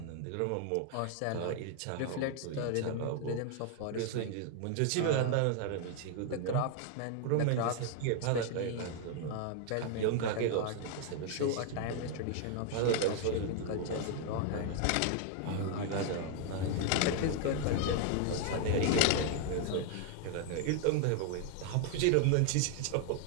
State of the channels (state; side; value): different; both; correlation 0.00